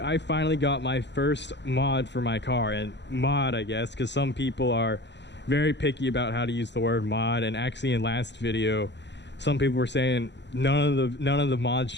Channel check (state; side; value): late; right; 0.51 ms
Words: I finally got my first mod for my car. And mod, I guess, because some people are very picky about how to use the word mod. And actually in last video, some people were saying none of the mods